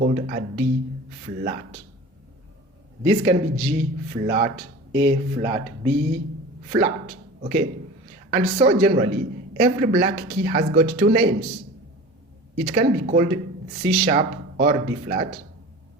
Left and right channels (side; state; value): both; normal; correlation 0.37